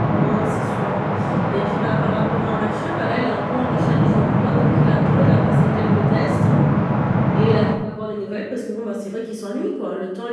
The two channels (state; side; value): identical; both; correlation 1.00